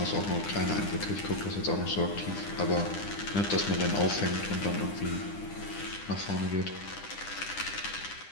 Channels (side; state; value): right; late; 10 ms